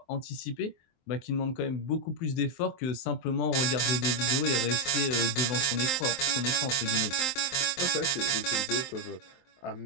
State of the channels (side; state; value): right; late; 23 ms